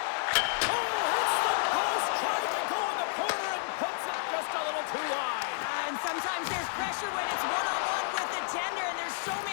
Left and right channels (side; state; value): right; silent; digital silence